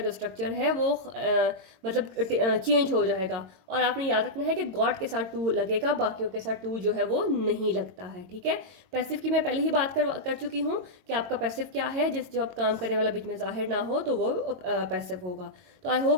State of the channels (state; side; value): late; left; 22 ms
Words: स्ट्रक्चर है वो मतलब चेंज हो जाएगा। और आपने याद रखना है कि गॉट के साथ टू लगेगा, बाकियों के साथ टू जो है वो नहीं लगता है, ठीक है। पैसिव की मैं पहले ही बात कर चुकी हूँ कि आपका पैसिव क्या है, जिस जो आप काम करने वाला बीच में जाहिर ना हो तो वो पैसिव होगा। तो आई